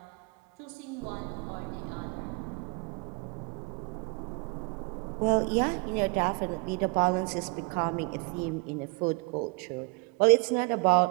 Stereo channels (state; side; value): quieter; left; 30.1 dB